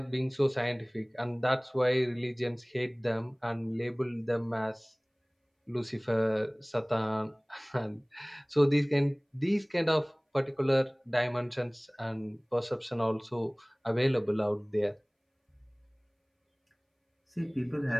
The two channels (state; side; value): identical; both; correlation 1.00